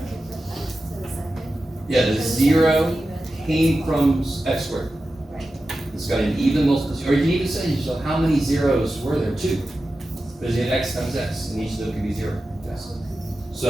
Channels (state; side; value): normal; both; correlation 0.93